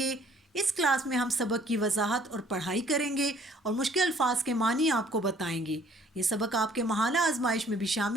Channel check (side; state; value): both; normal; correlation 0.58